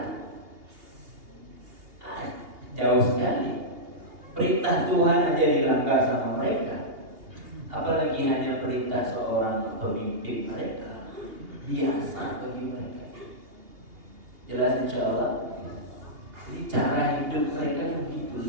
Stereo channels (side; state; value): left; late; 2.8 ms